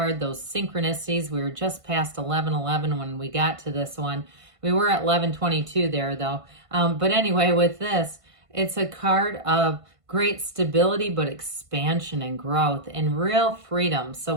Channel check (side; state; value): left; late; 1.5 ms